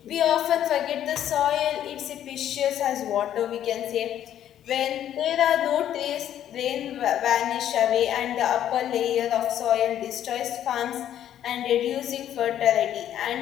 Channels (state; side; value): quieter; right; 10.9 dB